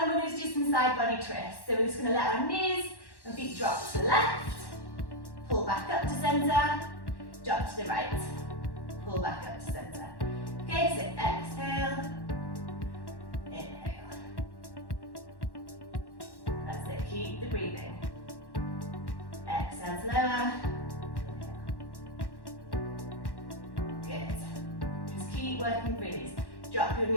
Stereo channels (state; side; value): late; right; 1.1 ms